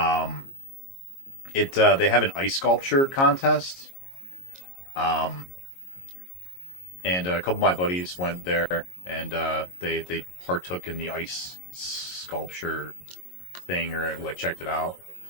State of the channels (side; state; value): right; late; 22 ms